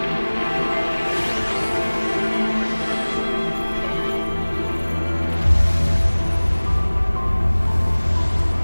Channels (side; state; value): both; inverted; correlation -1.00